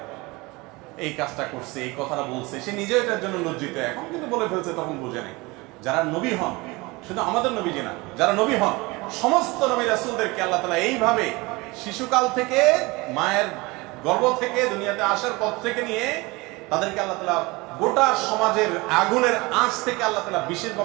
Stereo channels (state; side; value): quieter; left; 23.7 dB